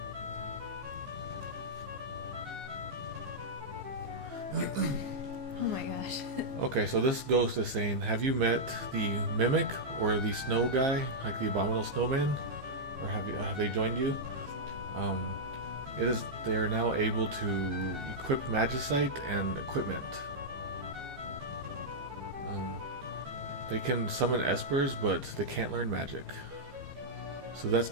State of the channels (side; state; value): left; late; 15 ms